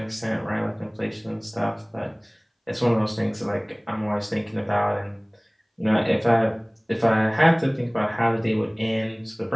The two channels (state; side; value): identical; both; correlation 1.00